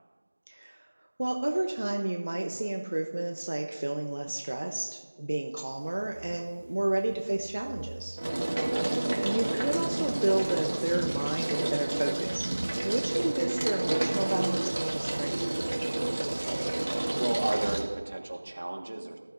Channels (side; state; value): both; inverted; correlation -1.00